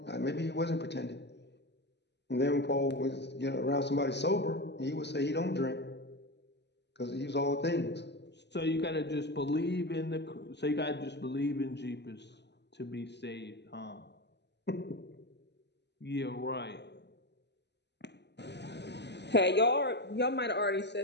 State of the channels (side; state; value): right; late; 0.50 ms